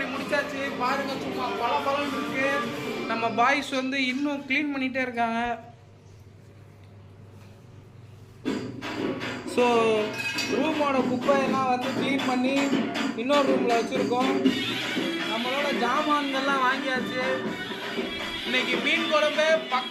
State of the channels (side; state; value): both; identical; correlation 1.00